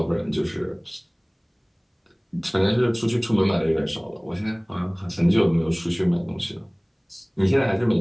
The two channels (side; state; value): both; identical; correlation 1.00